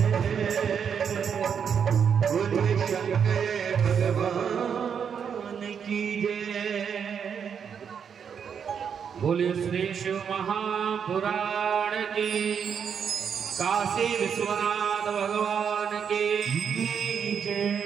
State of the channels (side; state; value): left; quieter; 7.3 dB